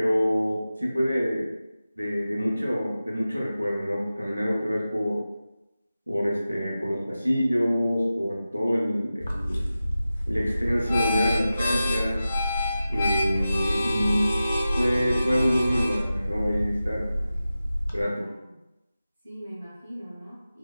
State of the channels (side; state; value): both; inverted; correlation -0.94